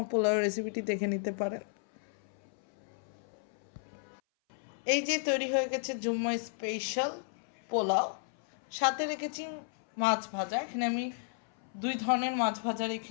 পোলাওয়ের রেসিপিটি দেখে নিতে পারেন। এই যে তৈরি হয়ে গেছে জুম্মা স্পেশাল পোলাও, সাথে রেখেছি মাছ ভাজা। এখানে আমি দুই ধরনের মাছ ভাজা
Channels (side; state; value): right; silent; 55 dB below the other